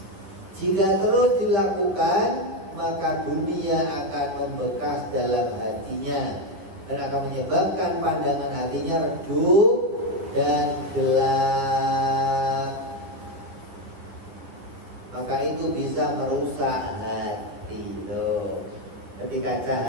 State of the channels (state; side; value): late; left; 10 ms